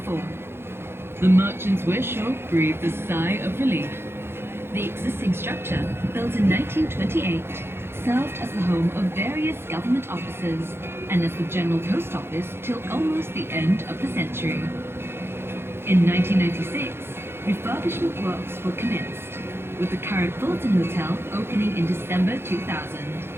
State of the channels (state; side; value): late; left; 0.11 ms